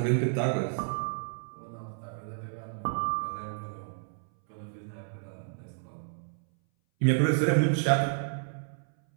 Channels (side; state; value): left; silent; 57 dB below the other